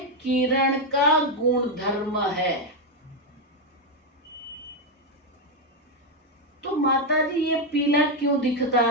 किरण का गुणधर्म है। तो माता जी, ये पीला क्यों दिखता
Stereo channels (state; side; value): normal; both; correlation 0.04